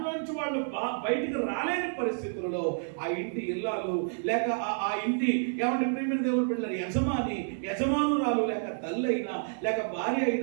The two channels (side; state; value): left; silent; digital silence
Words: వాళ్ళు బయటికి రాలేని పరిస్థితులలో ఆ ఇంటి ఇల్లాలు లేక ఆ ఇంటి ఏమంటే ప్రియమైన దేవుని బిడ్డల యజమానురాలు లేక తల్లి అయినా లేక భార్య